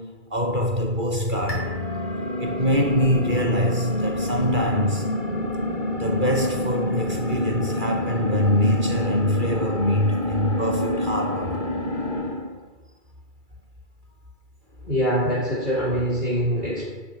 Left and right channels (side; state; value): left; late; 2.3 ms